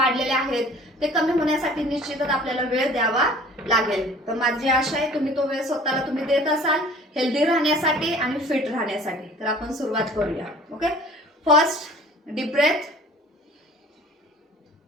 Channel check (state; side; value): normal; both; correlation 0.48